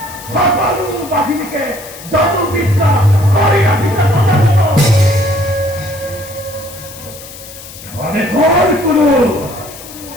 সকল বাহিনীকে জাদু বিদ্যা করিয়া দিতে ঘরে ঘর করো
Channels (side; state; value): left; noise; hiss, 16 dB below the sound